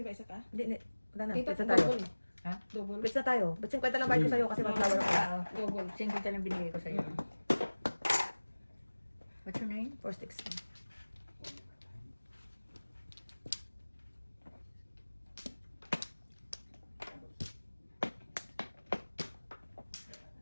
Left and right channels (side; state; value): both; inverted; correlation -1.00